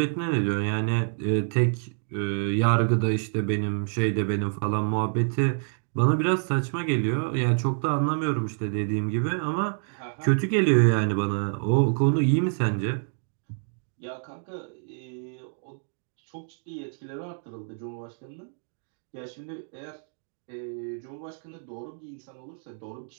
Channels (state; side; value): silent; left; digital silence